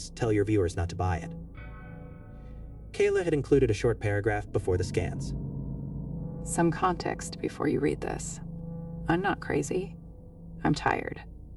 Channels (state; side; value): identical; both; correlation 1.00